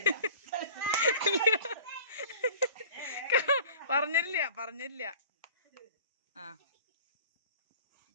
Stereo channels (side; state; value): both; inverted; correlation -0.44